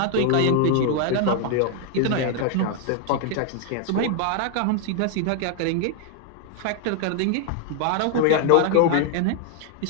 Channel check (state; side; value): different; both; correlation 0.00